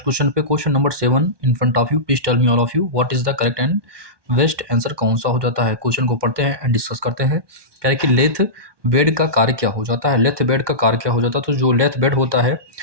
क्वेश्चन पे। Question number 7 in front of you, please tell me all of you what is the correct and best answer कौन सा हो जाता है। क्वेश्चन को पढ़ते हैं एंड डिस्कस करते हैं। कह रहे कि लेथ बेड का कार्य क्या हो जाता है। लेथ बेड का कार्य क्या हो जाता है, तो जो लेथ बेड होता है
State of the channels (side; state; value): left; late; 1.2 ms